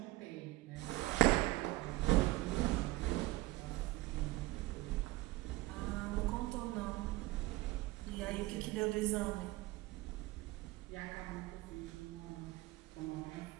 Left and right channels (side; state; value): left; quieter; 19.1 dB